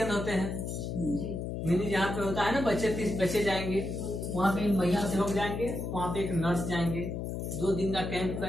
होते हैं, मिनी जहाँ पे होता है ना, 30 बच्चे जाएंगे, वहाँ पे महिला सेवक जाएंगे, वहाँ पे एक नर्स जाएंगे, 2 दिन का कैंप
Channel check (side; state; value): left; noise; hum, 4 dB below the sound